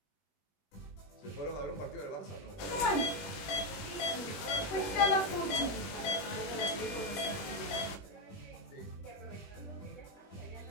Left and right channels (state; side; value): late; right; 21 ms